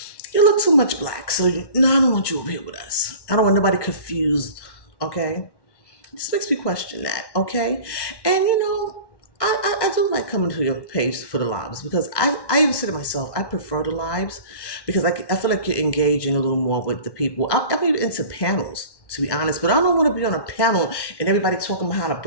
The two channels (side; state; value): right; late; 1.1 ms